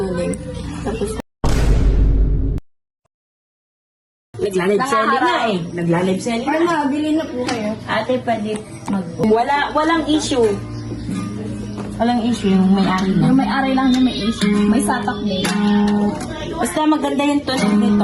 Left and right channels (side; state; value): both; identical; correlation 1.00